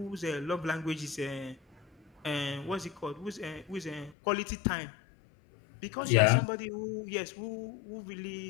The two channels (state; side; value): drops out; right; at 4.2 s